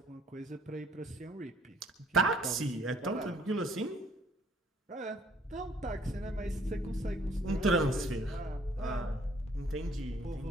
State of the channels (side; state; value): both; normal; correlation 0.61